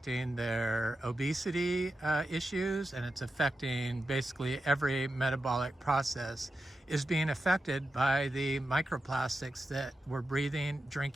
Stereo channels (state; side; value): normal; both; correlation 0.90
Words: their obesity issues, and it's affecting basically every metabolic process is being affected by the microplastics that we're breathing,